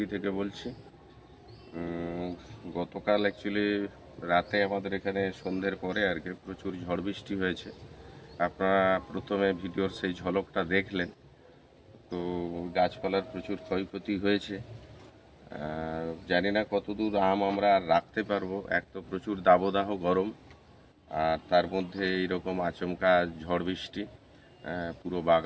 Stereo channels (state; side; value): identical; both; correlation 1.00